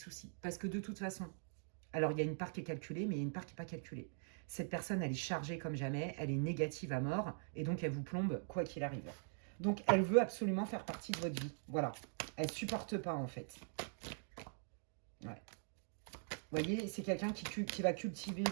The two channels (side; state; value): left; silent; digital silence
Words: Parce que de toute façon, alors il y a une part qui est calculée, mais il y a une part qui n'est pas calculée. Cette personne, elle est chargée comme jamais, elle est négative à mort, et donc elle vous plombe quoi qu'il arrive. Donc elle veut absolument faire partie de votre vie. Voilà. Elle ne supporte pas en fait. Ouais. Vous voyez, c'est quelqu'un qui va cultiver